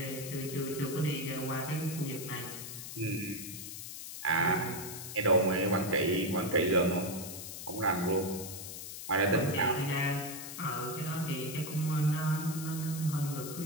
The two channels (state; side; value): noise; left; hiss, 9 dB below the sound